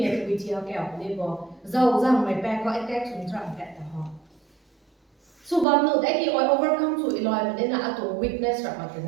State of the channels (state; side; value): drops out; left; at 5.7 s